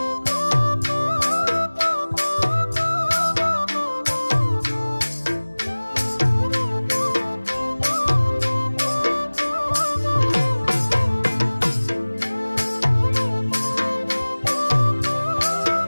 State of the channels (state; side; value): inverted; both; correlation -1.00